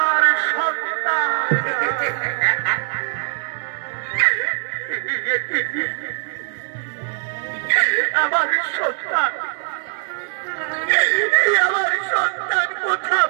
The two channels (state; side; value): silent; left; 58 dB below the other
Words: সন্তান আমার সন্তান আমার সন্তান কথা